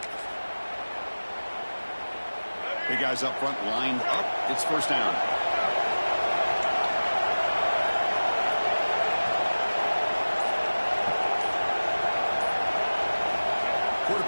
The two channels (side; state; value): both; inverted; correlation -1.00